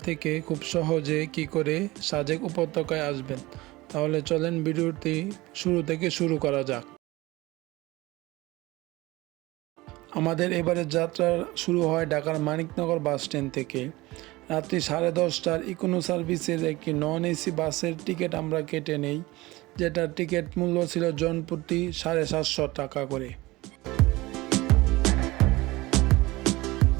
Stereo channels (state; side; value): quieter; left; 20.2 dB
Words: থেকে খুব সহজে কি করে সাজেক উপত্যকায় আসবেন। তাহলে চলেন ভিডিওটি শুরু থেকে শুরু করা যাক। আমাদের এবারের যাত্রা শুরু হয় ঢাকার মানিকনগর বাস স্ট্যান্ড থেকে। রাত্রি 10:30টার ইকোনো সার্ভিসের একটি নন এসি বাসের টিকিট আমরা কেটে নেই, যেটার টিকিট মূল্য ছিল জনপ্রতি 750 টাকা করে।